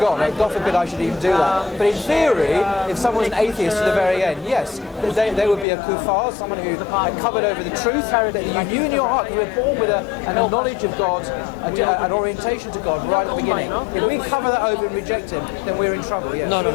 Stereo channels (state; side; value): drops out; right; at 5.7 s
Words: God forbid I should even do that. But in theory, if someone's an atheist to the very end, yes, they would be a kuffar, someone who had covered over the truth that you knew in your heart, because we're born with a knowledge of God, an orientation to God right at the beginning. If we cover that over and reject Him, then we're in trouble. Yes. There's